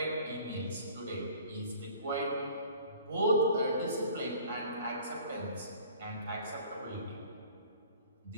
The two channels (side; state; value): both; inverted; correlation -0.49